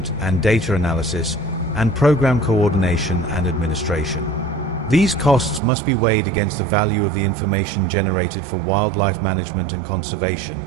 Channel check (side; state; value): left; drops out; at 5.6 s